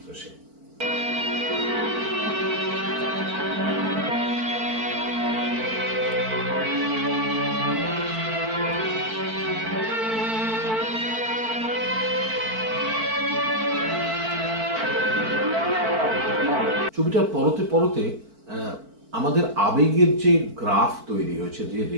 সেন। ছবিটার পরতে পরতে আমাদের আবেগের যে গ্রাফ তৈরি হয়েছে, যে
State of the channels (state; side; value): late; left; 4.5 ms